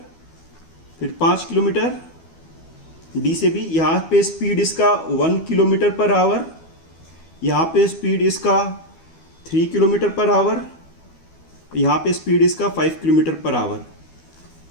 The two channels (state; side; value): late; right; 12 ms